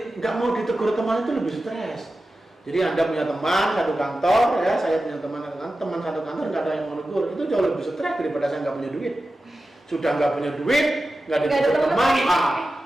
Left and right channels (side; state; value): both; normal; correlation 0.93